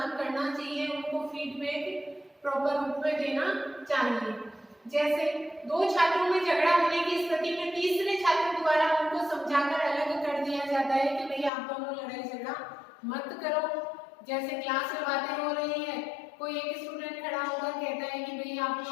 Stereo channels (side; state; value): right; drops out; at 11.5 s